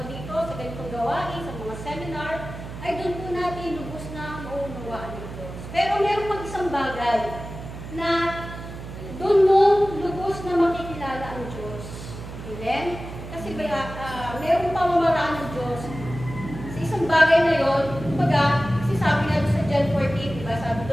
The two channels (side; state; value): right; noise; hum, 11 dB below the sound